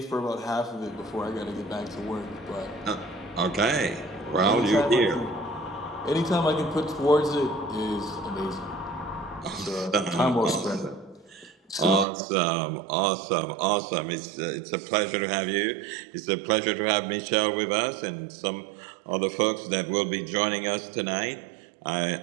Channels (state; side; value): drops out; left; at 12.1 s